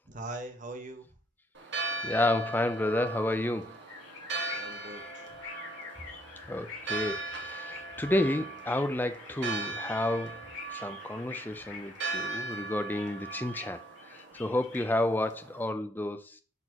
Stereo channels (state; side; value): normal; both; correlation 0.70